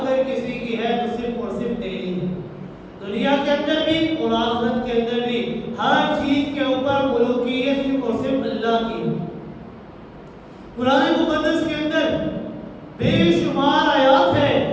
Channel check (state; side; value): identical; both; correlation 1.00